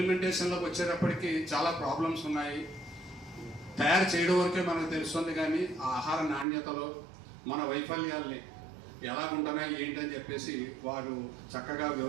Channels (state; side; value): drops out; left; at 6.5 s